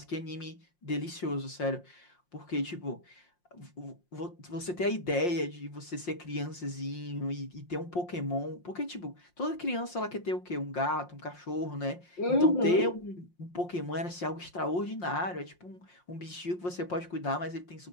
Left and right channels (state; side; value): late; right; 5.6 ms